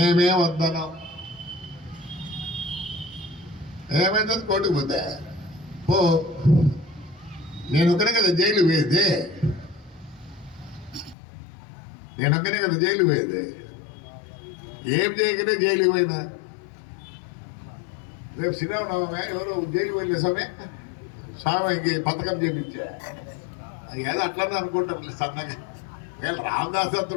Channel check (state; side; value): drops out; right; at 11.2 s